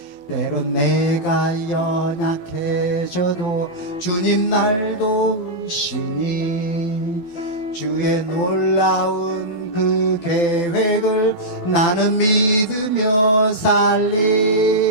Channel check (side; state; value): right; late; 12 ms